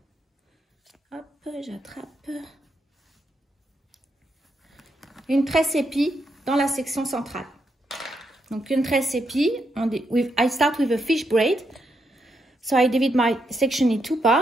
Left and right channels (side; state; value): both; normal; correlation 0.81